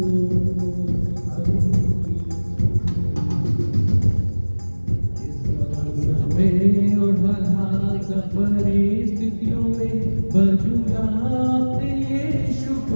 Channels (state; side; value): inverted; both; correlation -1.00